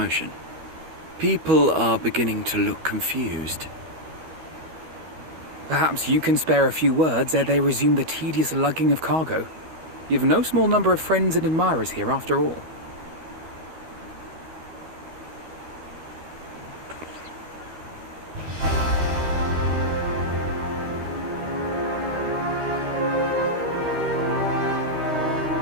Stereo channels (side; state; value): left; late; 13 ms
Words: People are beginning to look confused. Perhaps you can spare a few words ere they resume the tedious lugging of cargo. You've no small number of friends and admirers here, after all.